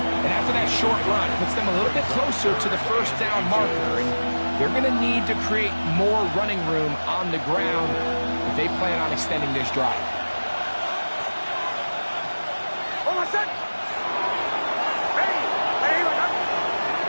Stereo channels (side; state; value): both; inverted; correlation -1.00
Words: And after that short run, puts them a little bit closer to the 1st down marker. And they're going to need to create more running room on the ground if they plan on extending this drive.